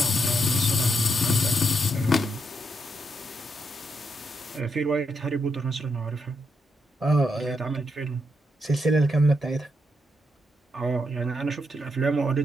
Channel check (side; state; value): both; normal; correlation 0.80